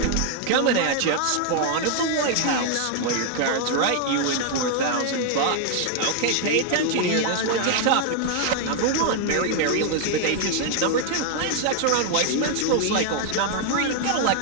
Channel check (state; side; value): different; both; correlation 0.00